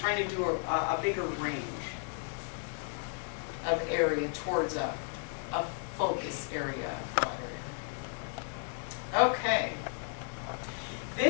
to do a bigger range of area towards a focus area. Okay.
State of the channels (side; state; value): right; silent; 55 dB below the other